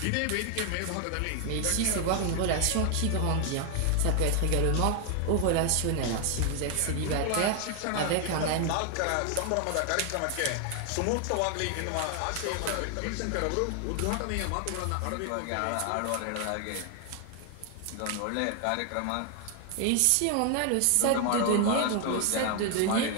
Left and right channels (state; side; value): different; both; correlation 0.00